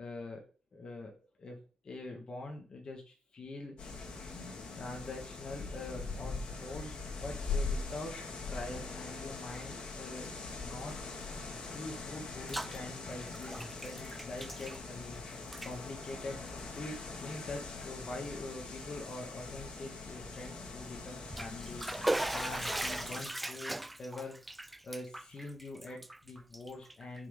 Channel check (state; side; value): normal; both; correlation 0.79